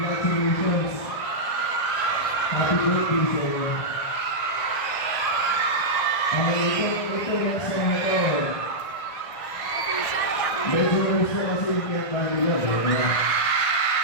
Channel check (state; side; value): late; right; 1.6 ms